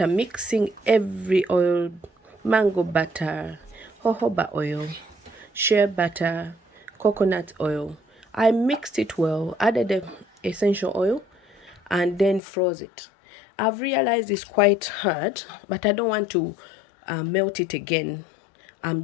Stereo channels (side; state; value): right; drops out; at 12.4 s